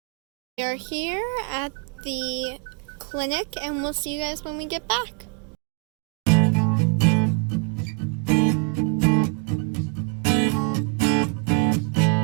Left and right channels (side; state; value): left; quieter; 35.5 dB